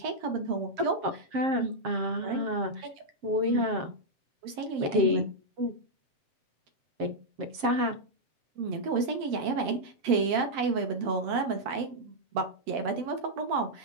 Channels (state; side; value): late; left; 7.4 ms